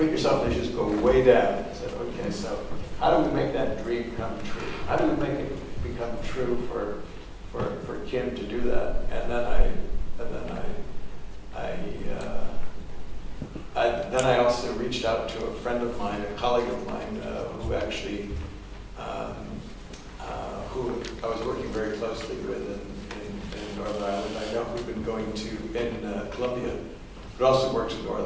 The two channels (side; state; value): both; identical; correlation 1.00